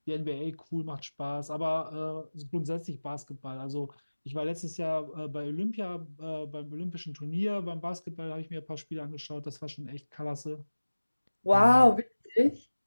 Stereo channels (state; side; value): inverted; both; correlation -1.00